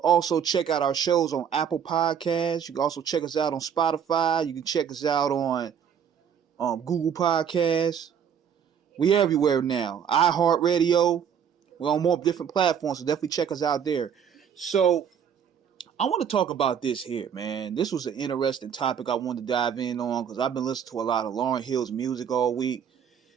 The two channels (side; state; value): left; quieter; 8.0 dB